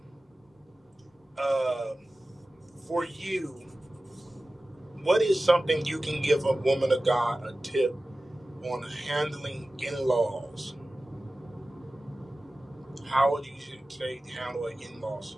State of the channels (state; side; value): normal; both; correlation 0.96